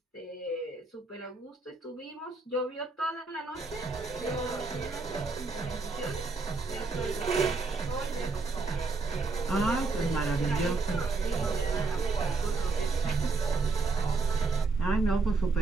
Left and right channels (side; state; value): left; quieter; 3.9 dB